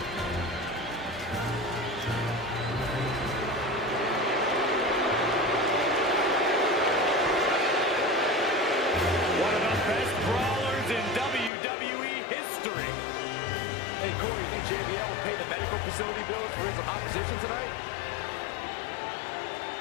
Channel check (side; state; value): right; drops out; at 11.5 s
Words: One of the best brawlers in WWE history. Hey, Corey, you think JBL will pay the medical facility bills for his opposition tonight?